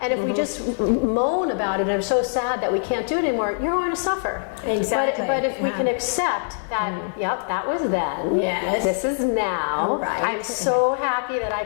And if we just moan about it and are so sad that we can't do it anymore, you're going to suffer. Exactly. But if we can accept that, that was then. Yes. This is now. Right. I'm so happy that I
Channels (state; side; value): silent; right; digital silence